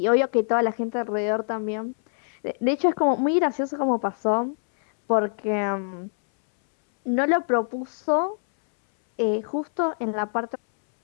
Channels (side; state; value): right; silent; 62 dB below the other